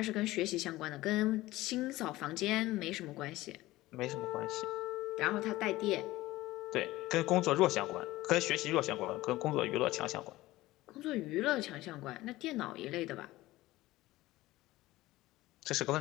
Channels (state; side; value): quieter; right; 17.7 dB